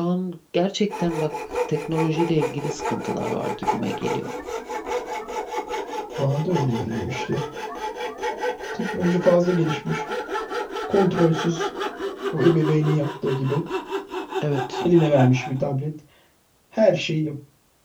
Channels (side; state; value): both; identical; correlation 1.00